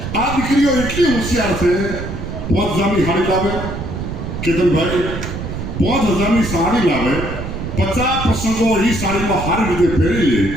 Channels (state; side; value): noise; right; rumble, 6 dB below the sound